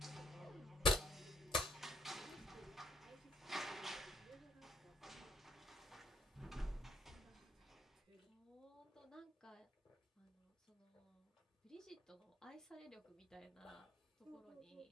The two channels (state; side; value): normal; both; correlation 0.67